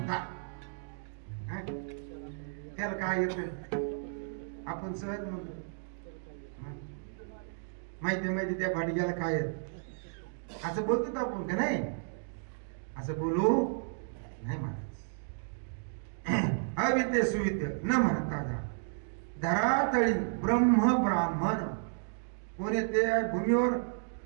त्याला काय येत आपण सहज म्हणतो. माहिती त्या भाटग्याला काय येत असं बोलतो आपण का नाही? असं बोलू नाही महाराज. अविद्य सुविद्य न म्हणता धरातळी ब्रह्म ब्राह्मण कोणी ते भूमीवर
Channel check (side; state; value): left; silent; digital silence